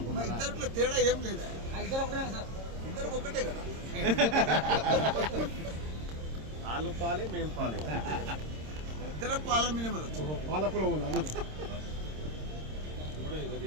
ఇద్దరిలో తేడా ఏం లేదా, ఇద్దరు ఒకటే కదా. వాళ్ళు పాలే మేము పాలే, ఇద్దరు పాల మినిమే వచ్చు. పాలకుల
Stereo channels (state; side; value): late; left; 26 ms